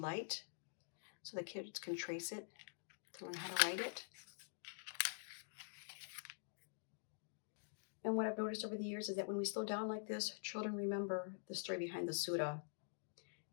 so the kids can trace it to learn how to write it. And what I've noticed over the years is that when we slow down like this, children remember the story behind the surah.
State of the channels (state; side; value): silent; right; digital silence